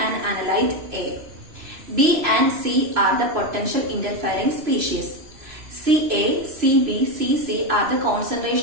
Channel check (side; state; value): left; late; 3.0 ms